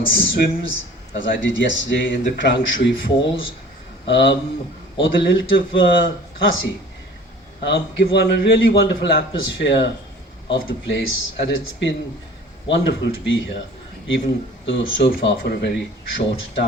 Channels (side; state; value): both; normal; correlation 0.46